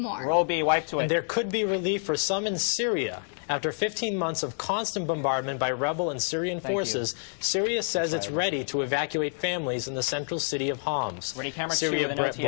Roll B, wipe to it. And there could be relief for some in Syria. After 15 months of constant bombardment by rebel and Syrian forces, Syria says it's ready to evacuate families in the central city of Homs. Ready, camera Syria 2 with an OTS.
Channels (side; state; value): right; silent; digital silence